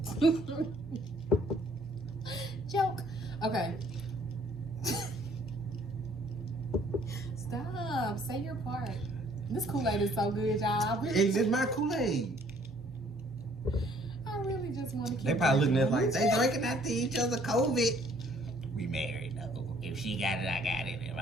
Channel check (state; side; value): normal; both; correlation 0.60